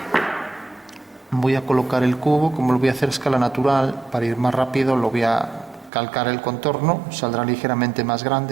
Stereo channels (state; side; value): drops out; left; at 5.9 s